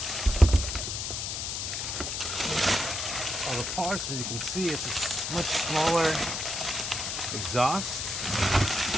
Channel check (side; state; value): left; noise; hiss, 3 dB below the sound